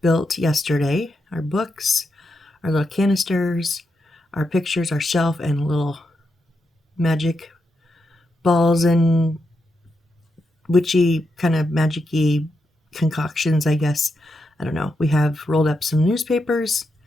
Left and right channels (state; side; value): normal; both; correlation 0.84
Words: built yesterday. Our books, our little canisters, our pictures, our shelf, and little magic balls and witchy kind of magic-y concoctions, I guess. I don't know. We have rolled up some newspapers.